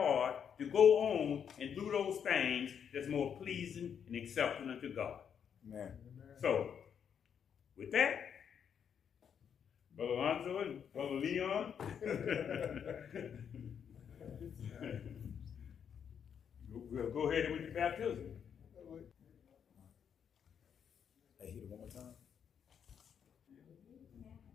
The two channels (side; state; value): right; quieter; 7.8 dB